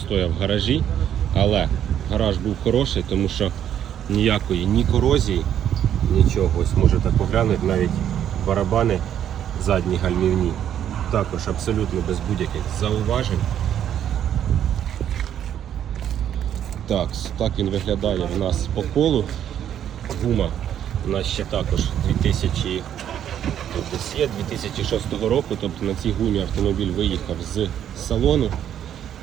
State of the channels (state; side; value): quieter; left; 10.0 dB